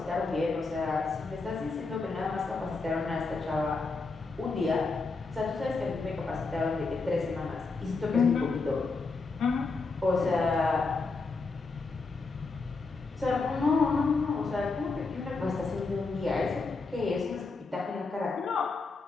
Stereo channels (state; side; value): quieter; right; 4.0 dB